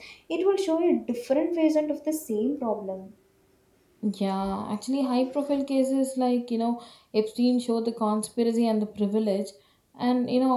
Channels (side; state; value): both; identical; correlation 1.00